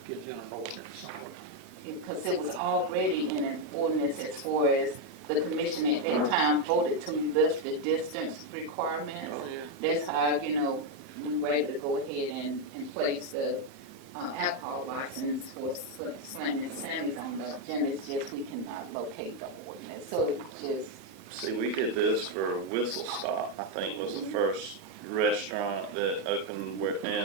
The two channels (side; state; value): right; late; 7.2 ms